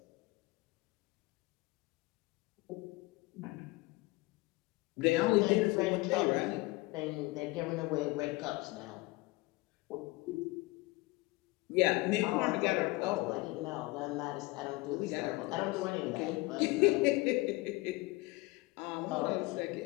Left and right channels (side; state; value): right; quieter; 22.3 dB